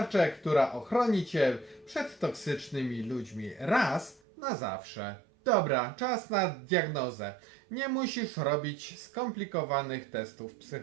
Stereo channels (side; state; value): left; drops out; at 4.2 s